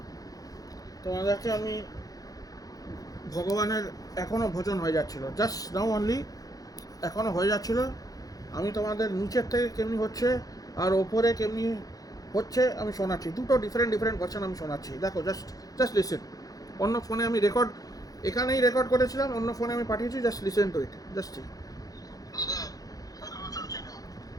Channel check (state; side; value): late; right; 0.17 ms